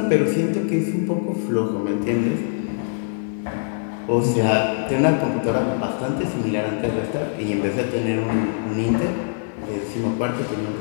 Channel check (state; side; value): silent; right; 57 dB below the other